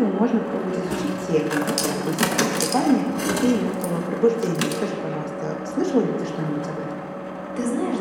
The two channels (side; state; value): both; identical; correlation 1.00